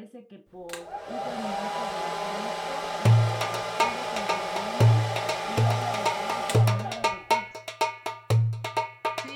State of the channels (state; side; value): identical; both; correlation 1.00